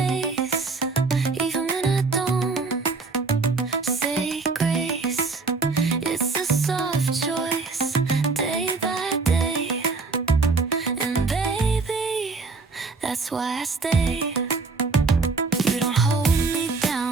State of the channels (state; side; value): quieter; left; 4.1 dB